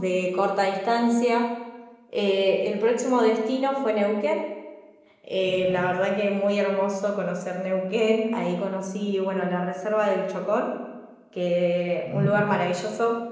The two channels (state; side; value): identical; both; correlation 1.00